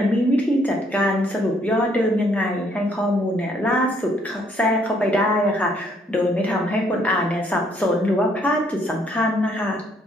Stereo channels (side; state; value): both; normal; correlation 0.67